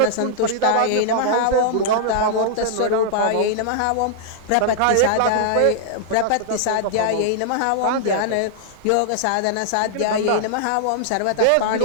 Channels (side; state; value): both; different; correlation -0.01